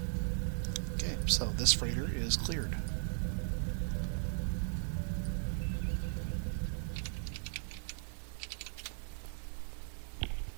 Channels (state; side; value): silent; left; 53 dB below the other